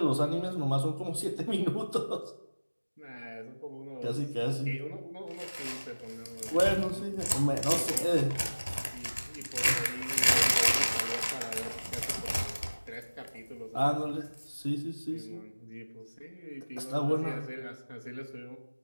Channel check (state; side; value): inverted; both; correlation -1.00